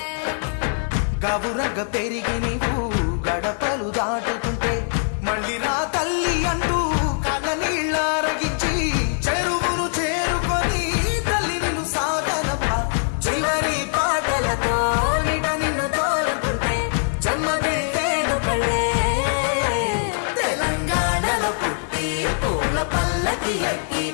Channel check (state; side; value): silent; right; digital silence